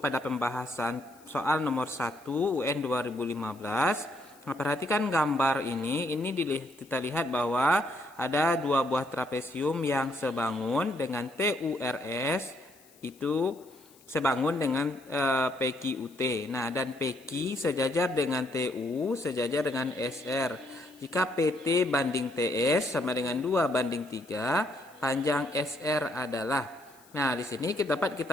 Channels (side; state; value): left; noise; hiss, 27 dB below the sound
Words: pembahasan soal nomor 1 UN 2015. Nah, perhatikan gambar ini kita lihat bahwa ada dua buah trapesium yang sebangun dengan TURS itu sebangun dengan PQUT. Nah, dan PQ sejajar dengan TU sejajar dengan SR. Jika PT banding TS sama dengan 2:3, panjang SR adalah. Nah, di sini dapat